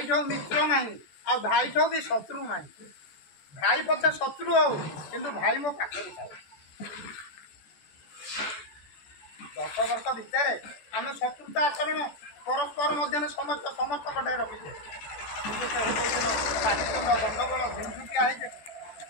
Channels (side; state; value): right; late; 14 ms